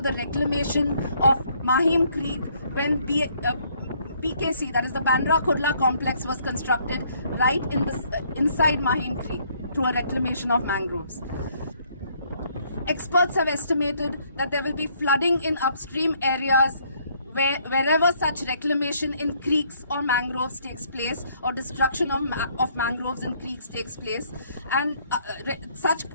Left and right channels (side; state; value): both; inverted; correlation -0.66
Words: the reclamation of Mahim Creek when PKC, that is the Bandra Kurla complex, was constructed right inside Mahim Creek through a reclamation of mangroves. Experts have estimated that there will be flooding in upstream areas wherever such reclamation in creeks or mangroves takes place, or destruction of mangroves and creeks takes place, and